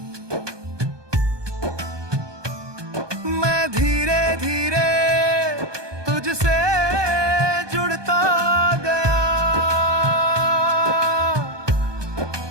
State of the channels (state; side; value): late; left; 1.2 ms